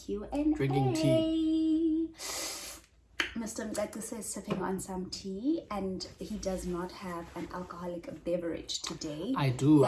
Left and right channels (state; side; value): identical; both; correlation 1.00